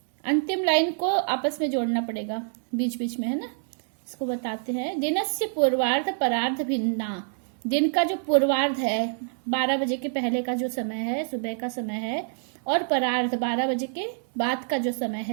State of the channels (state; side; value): silent; left; 61 dB below the other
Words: अंतिम लाइन को आपस में जोड़ना पड़ेगा बीच बीच में, है ना। इसको बताते हैं। दिनस्य पूर्वार्ध परार्ध भिन्ना, दिन का जो पूर्वार्ध है 12 बजे के पहले का जो समय है, सुबह का समय है, और परार्ध 12 बजे के बाद का जो समय